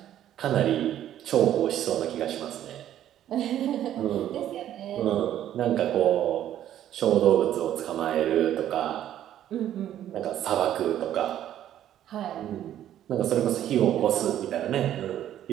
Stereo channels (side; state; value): left; quieter; 11.5 dB